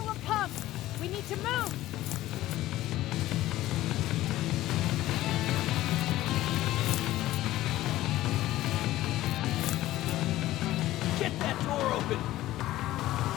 will come! We need to move! Get that door open!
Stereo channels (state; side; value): quieter; right; 15.5 dB